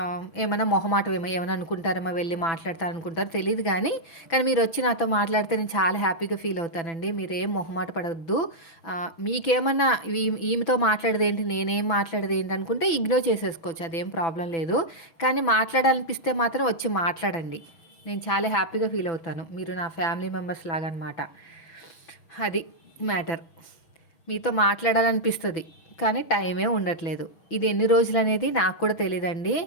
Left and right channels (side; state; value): right; late; 6.0 ms